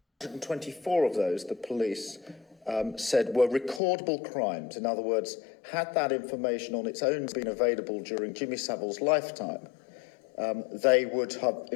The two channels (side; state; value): right; drops out; at 3.8 s